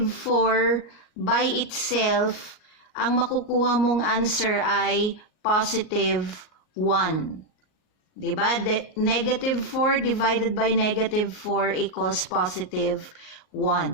4 by itself, ang makukuha mong answer ay positive 1. Diba? Negative 4 divided by negative 4 equals positive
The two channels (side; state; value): right; late; 38 ms